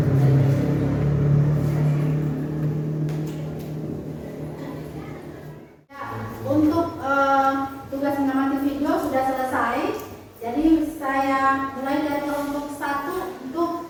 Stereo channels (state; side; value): identical; both; correlation 1.00